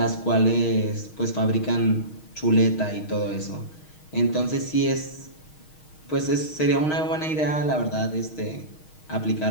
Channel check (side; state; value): right; late; 6.4 ms